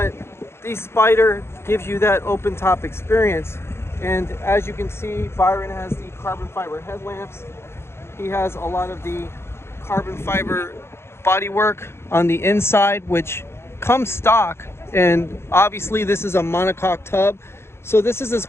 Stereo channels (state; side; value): late; right; 0.12 ms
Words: the Spider gives you that open top experience, and as you can see, Byron has the carbon fiber headlamps. He has a lot of the carbon fiber bodywork on the inside, which comes stock, and obviously this is a monocoque tub, so this is as